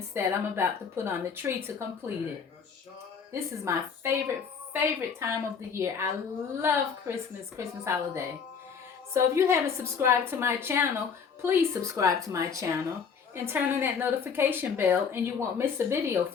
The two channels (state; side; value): quieter; right; 6.2 dB